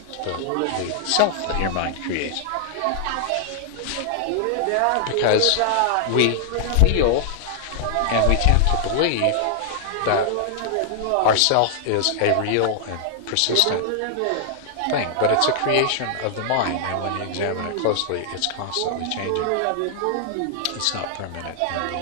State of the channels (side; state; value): both; different; correlation -0.01